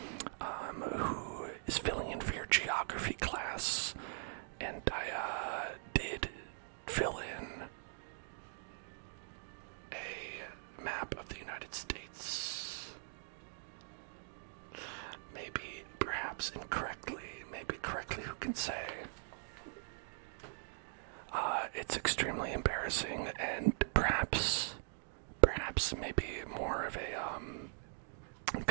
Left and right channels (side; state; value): left; silent; digital silence